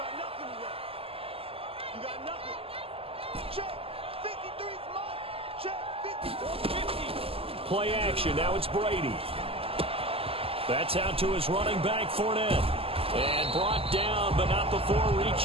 nothing left. You got nothing. Check. 53's mark. Check. 50. 50. Play action. Now it's Brady. That's out to his running back, Fournette. And brought down, but not before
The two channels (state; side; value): late; left; 0.28 ms